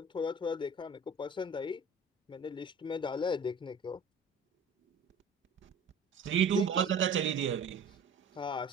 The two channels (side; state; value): left; quieter; 3.4 dB